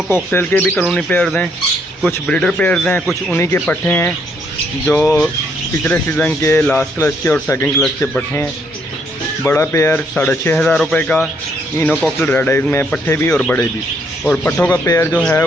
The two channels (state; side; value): normal; both; correlation 0.71